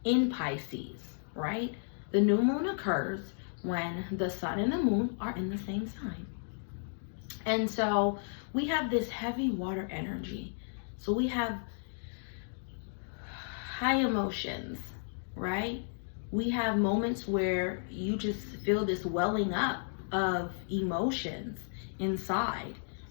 in Pisces, right? The new moon occurs when the sun and the moon are in the same sign. And so we have this heavy water energy. So we have high emotions, right? We have moments where you just feel this welling up of emotions inside,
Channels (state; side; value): silent; right; digital silence